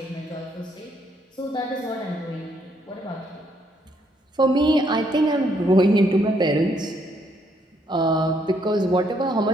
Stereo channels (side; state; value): both; normal; correlation 0.71